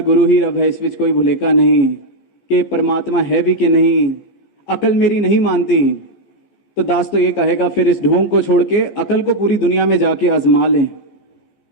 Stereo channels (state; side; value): late; right; 15 ms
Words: गुरु ही रब है, इस विच कोई भुलेखा नहीं, कि परमात्मा है भी कि नहीं, अकल मेरी नहीं मानती, तो दास तो ये कहेगा फिर इस ढोंग को छोड़ के अकल को पूरी दुनिया में जाके आजमा लें,